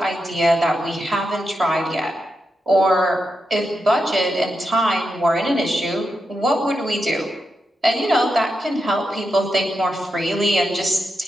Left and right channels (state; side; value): normal; both; correlation 0.87